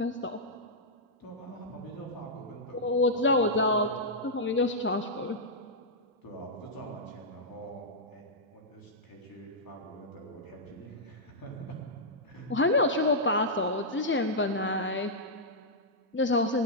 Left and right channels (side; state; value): both; normal; correlation -0.09